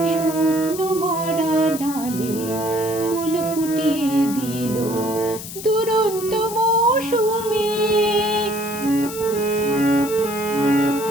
শুকনো মরা ডালে ফুল ফুটিয়ে দিল দুরন্ত মৌসুমী।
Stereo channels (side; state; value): left; noise; hiss, 11 dB below the sound